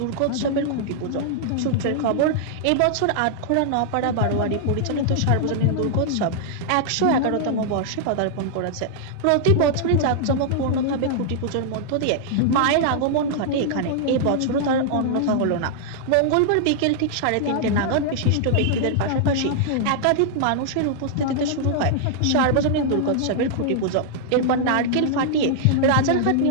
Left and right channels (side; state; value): both; different; correlation -0.01